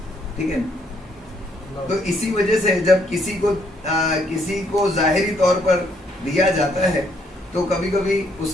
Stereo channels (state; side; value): normal; both; correlation 0.70